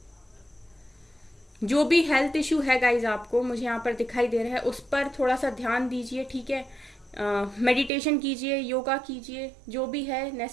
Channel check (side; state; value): left; drops out; at 7.9 s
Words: जो भी हेल्थ इशू है गाइज आपको मुझे यहाँ पर दिखाई दे रहा है, उस पर थोड़ा सा ध्यान दीजिए, ठीक है। मेडिटेशन कीजिए, योगा कीजिए, जो भी है